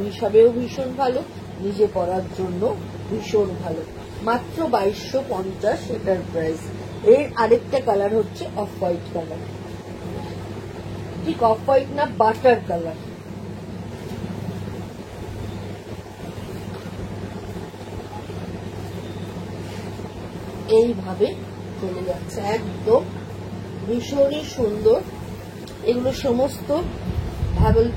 হিসাবেও ভীষণ ভালো, নিজে পরার জন্য ভীষণ ভালো। মাত্র 2250 এটার প্রাইস। এর আরেকটা কালার হচ্ছে অফ হোয়াইট কালার, ঠিক অফ হোয়াইট না, বাটার কালার। এইভাবে চলে যাচ্ছে, একদম ভীষণই সুন্দর। এগুলো সমস্ত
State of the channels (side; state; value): both; identical; correlation 1.00